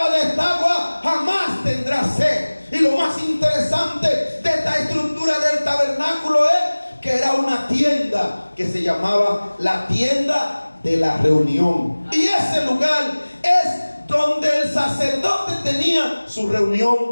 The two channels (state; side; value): inverted; both; correlation -1.00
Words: de esta agua jamás tendrá sed. Y lo más interesante de esta estructura del tabernáculo es que era una tienda que se llamaba la tienda de la reunión. Y ese lugar es donde el sacerdote tenía su